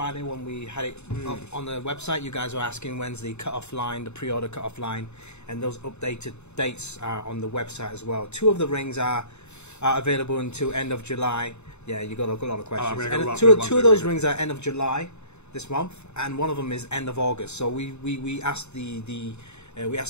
when we had it up on the website, you guys were asking when's the cut-off line, the pre-order cut-off line, and those updated dates are on the website as well. 2 of the rings are available until end of July. Yeah, you got a lot of questions. Two of those rings are end of July this month, and one of them is end of August. So we asked we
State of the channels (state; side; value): late; right; 0.82 ms